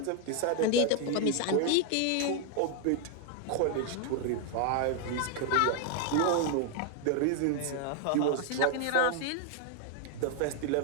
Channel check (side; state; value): both; different; correlation 0.00